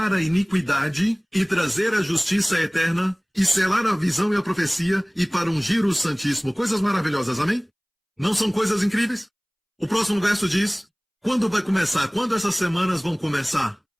a iniquidade e trazer a justiça eterna e selar a visão e a profecia e para ungir o Santíssimo. Coisas maravilhosas, amém? Não são coisas incríveis? O próximo verso diz, quando vai começar? Quando essas semanas vão começar?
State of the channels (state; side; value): identical; both; correlation 1.00